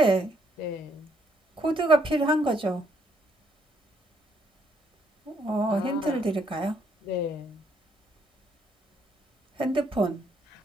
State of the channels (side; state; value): both; normal; correlation 0.70